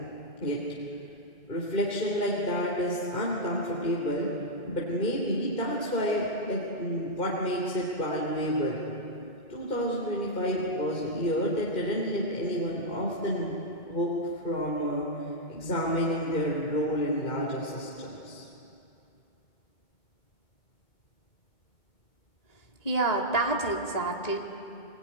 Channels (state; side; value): late; right; 2.2 ms